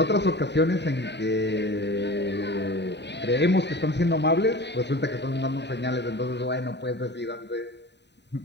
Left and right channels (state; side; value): late; right; 0.50 ms